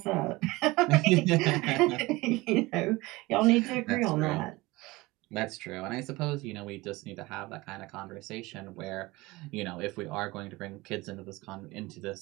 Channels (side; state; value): left; quieter; 21.3 dB